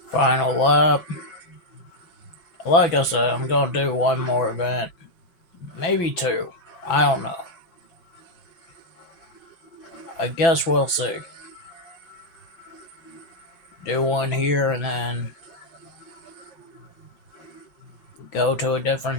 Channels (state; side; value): late; right; 6.0 ms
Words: Final lap. Like I said, I'm going to do one more event. Maybe 2. I don't know. I guess we'll see. Do one here and then go to a